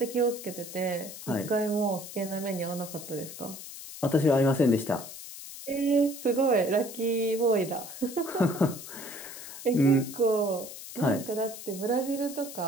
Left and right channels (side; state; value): left; noise; hiss, 12 dB below the sound